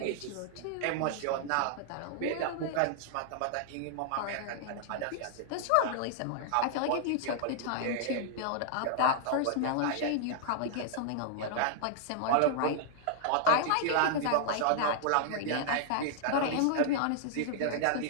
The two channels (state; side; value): different; both; correlation -0.01